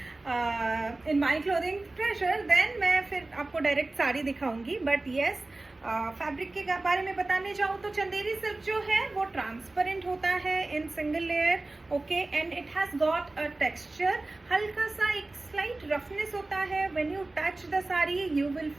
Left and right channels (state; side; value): quieter; left; 3.0 dB